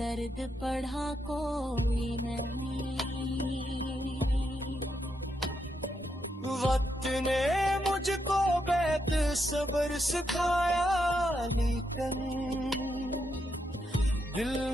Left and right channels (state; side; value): normal; both; correlation 0.81